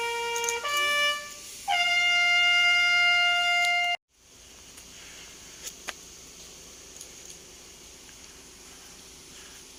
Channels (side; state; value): both; identical; correlation 1.00